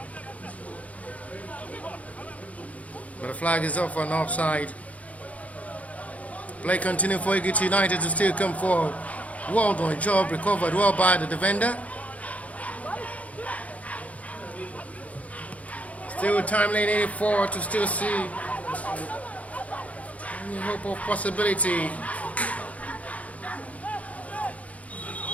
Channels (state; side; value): late; right; 0.068 ms